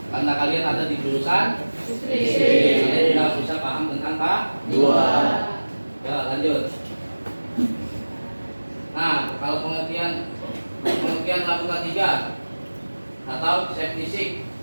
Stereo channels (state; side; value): inverted; both; correlation -1.00